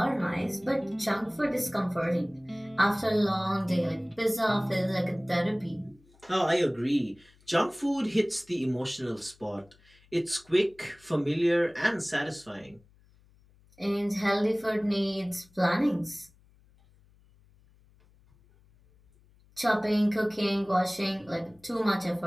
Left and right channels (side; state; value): left; noise; hum, 30 dB below the sound